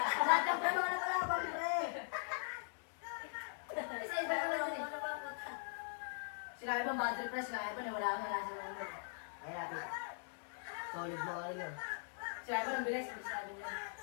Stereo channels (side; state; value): right; silent; digital silence